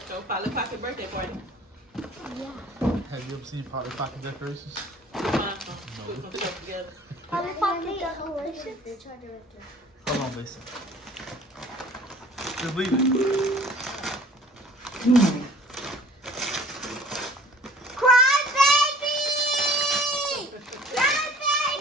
so Polly Pocket birthday party. Yeah. Have you ever seen Polly Pocket decorations? Put some stuff together. Polly Pocket decorations. Hold on, Mason. Just leave it. Cry baby! Cry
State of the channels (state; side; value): normal; both; correlation 0.49